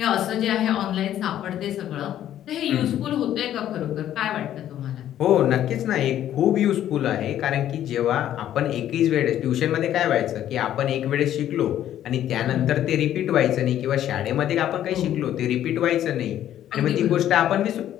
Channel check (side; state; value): right; quieter; 11.6 dB